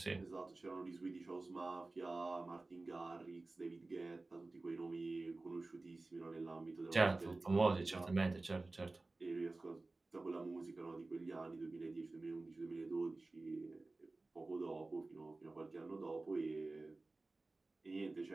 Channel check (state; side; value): quieter; left; 3.3 dB